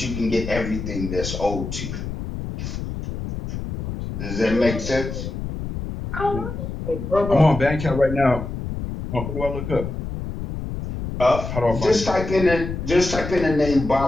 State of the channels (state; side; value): noise; left; rumble, 6 dB below the sound